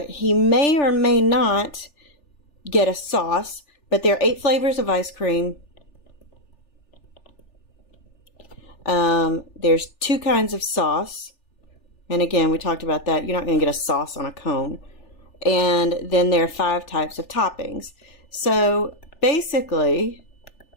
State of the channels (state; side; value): late; right; 3.4 ms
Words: he may or may not get a sauce, but there are 8 flavors of ice cream. There's 2 kinds of sauce. And again, we talked about that. You're not going to get a sauce on a cone. And then there are 5 types of toppings. So basically,